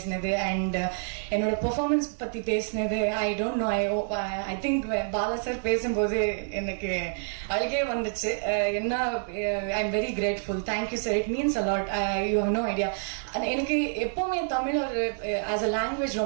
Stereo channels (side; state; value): left; silent; 59 dB below the other